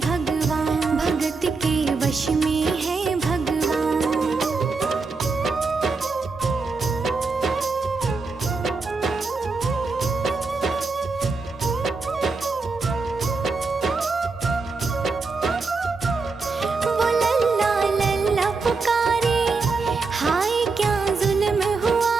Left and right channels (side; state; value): left; quieter; 4.2 dB